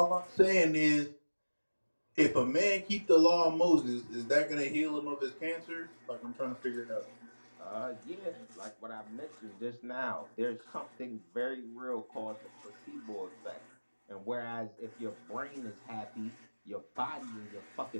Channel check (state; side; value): inverted; both; correlation -1.00